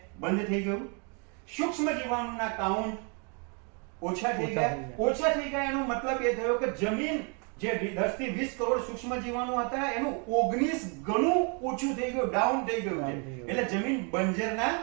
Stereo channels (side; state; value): left; quieter; 36.3 dB